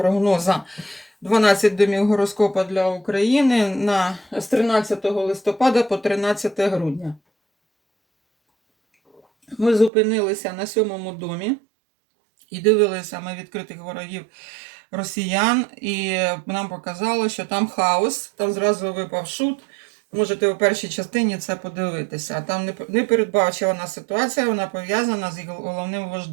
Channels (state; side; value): drops out; left; at 9.9 s